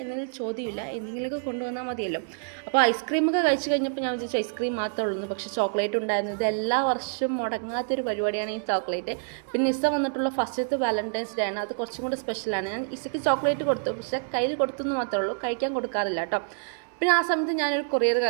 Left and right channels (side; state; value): left; silent; 60 dB below the other